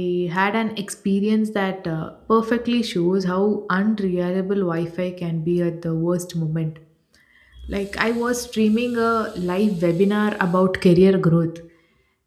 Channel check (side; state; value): both; identical; correlation 1.00